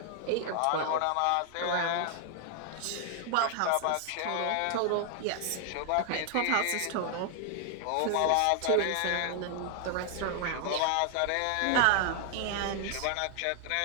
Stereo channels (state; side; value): different; both; correlation 0.00